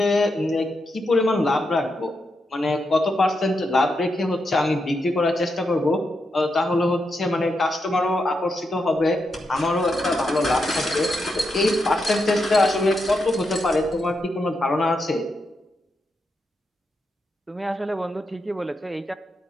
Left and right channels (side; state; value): both; normal; correlation 0.84